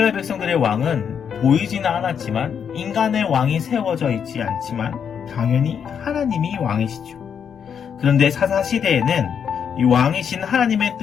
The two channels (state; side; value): quieter; right; 7.6 dB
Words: 백성들의 왕은 보이지는 않았지만 인간의 왕이 세워져 있지 않지만 당연히 하나님이 왕이시죠. 그런데 사사시대에는 이 왕이신 하나님의